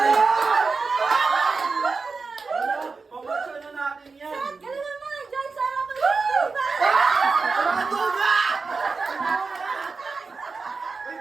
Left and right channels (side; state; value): left; quieter; 4.4 dB